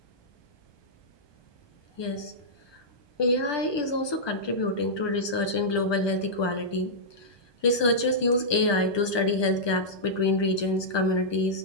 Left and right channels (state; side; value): late; right; 1.2 ms